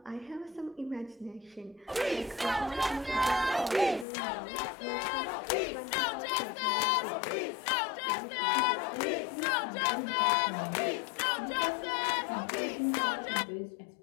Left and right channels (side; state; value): right; drops out; at 4.0 s